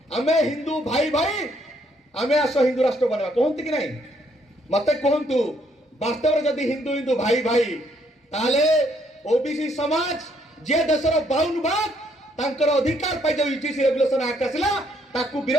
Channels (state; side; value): normal; both; correlation 0.70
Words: हमें हिंदू भाई भाई हमें आसो हिंदू राष्ट्र बनेवा कहंती कि नहीं मते कहंतु वास्तव में जदि हिंदू हिंदू भाई भाई ताले ओबीसी समाज जे देशर 52 भाग तांकर अधिकार पाई जो यूजीसी रेगुलेशन एक्ट आसिला ताकू